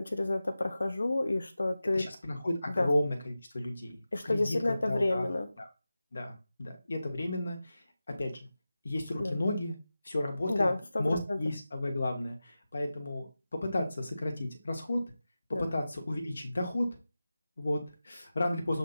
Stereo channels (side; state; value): both; inverted; correlation -0.94